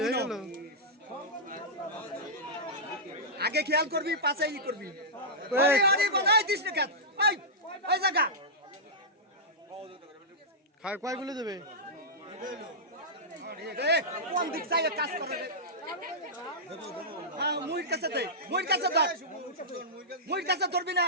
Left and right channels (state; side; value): normal; both; correlation -0.12